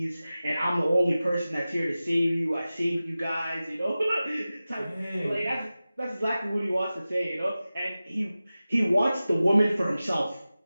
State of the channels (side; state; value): both; inverted; correlation -0.96